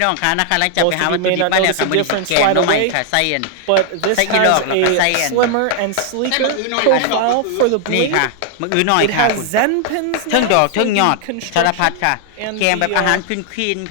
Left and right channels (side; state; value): both; different; correlation 0.00